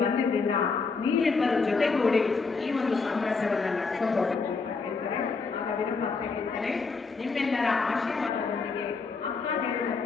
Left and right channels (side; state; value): right; quieter; 4.6 dB